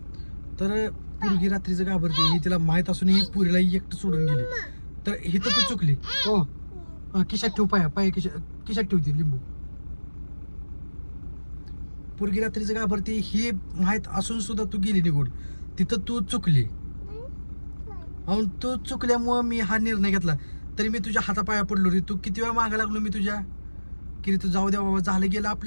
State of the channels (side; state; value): both; inverted; correlation -1.00